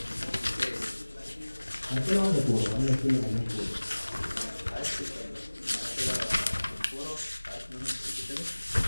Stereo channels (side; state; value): both; inverted; correlation -1.00